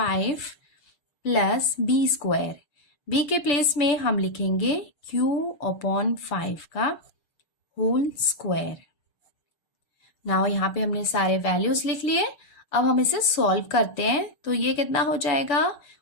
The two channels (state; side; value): late; right; 7.0 ms